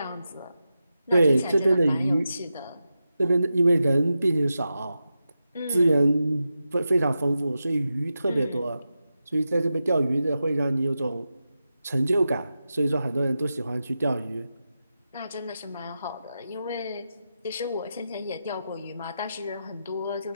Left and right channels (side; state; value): both; inverted; correlation -0.90